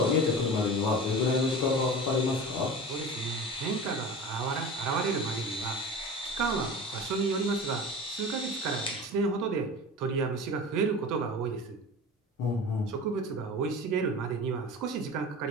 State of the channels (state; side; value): normal; both; correlation 0.34